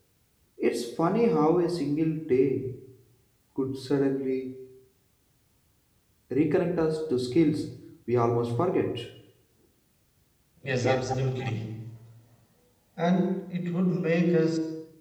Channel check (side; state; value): both; identical; correlation 1.00